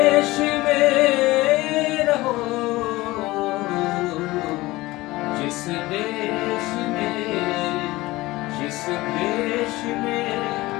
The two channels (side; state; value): right; quieter; 19.5 dB